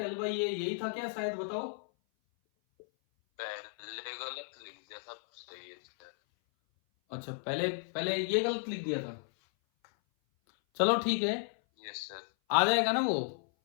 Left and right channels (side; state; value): right; silent; 55 dB below the other